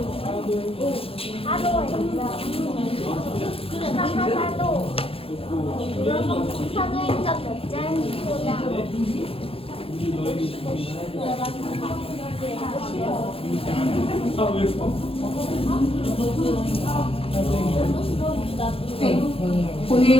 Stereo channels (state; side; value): late; right; 0.27 ms